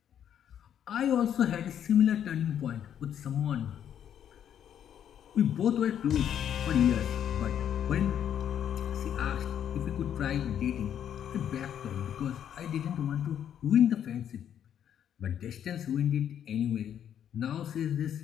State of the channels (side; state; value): right; quieter; 9.5 dB